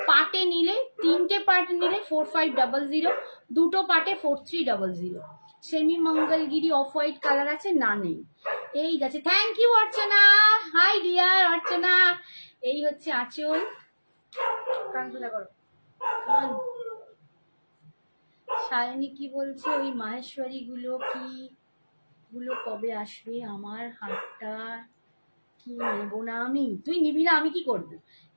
পাটে নিলে, তিনটে পাট নিলে 4500, দুটো পাটে 4300। Semi Mangalagiri off white colour আছে, না নেই। এই গেছে, thank you Archana, hi dear Archana. এই হচ্ছে আঁচল, সায়নী কি বলছে, ওই মাহেশ্বরী গুলো কি গুলো কবে আসবে? আমার হাতটা কি নেবো না আমি? তুই নিবি না, আমি কি করবো?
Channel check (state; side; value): inverted; both; correlation -1.00